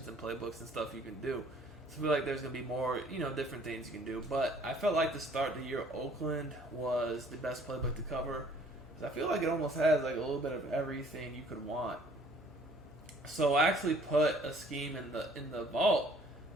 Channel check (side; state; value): both; normal; correlation 0.57